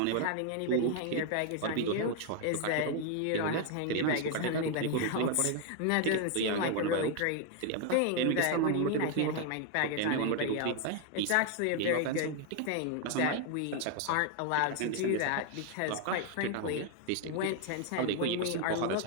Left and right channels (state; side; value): different; both; correlation 0.01